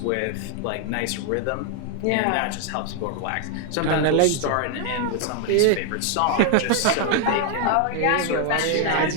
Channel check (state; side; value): different; both; correlation 0.00